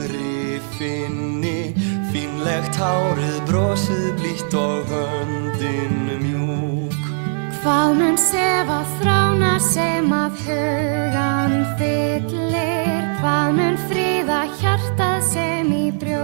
finni, fínlegt hárið brosið blítt og höndin mjúk. Hvað mun sefa þrána sem af hugan fyllir, hvað mun fríða hjartað sem í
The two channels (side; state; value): left; silent; digital silence